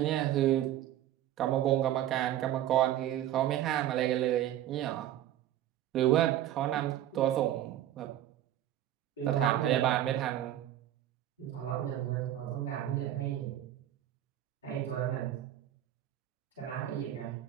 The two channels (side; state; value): left; quieter; 12.5 dB